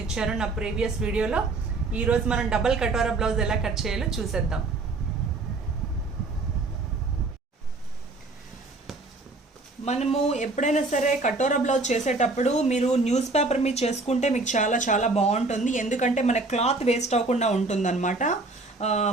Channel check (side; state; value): left; quieter; 3.4 dB